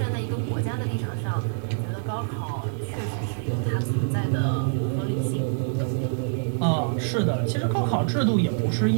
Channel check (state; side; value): silent; left; 61 dB below the other